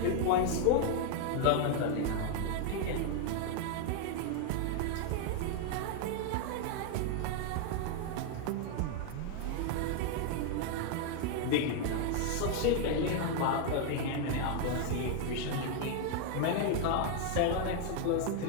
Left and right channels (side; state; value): both; different; correlation 0.00